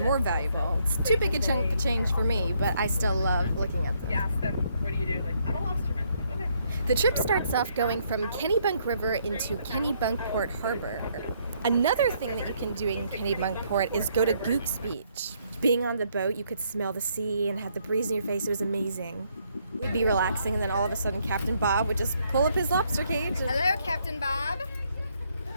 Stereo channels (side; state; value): both; inverted; correlation -0.71